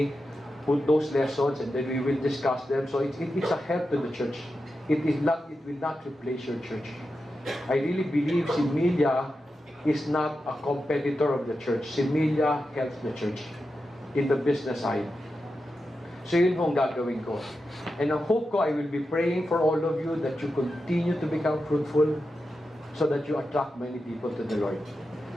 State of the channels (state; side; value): normal; both; correlation 0.90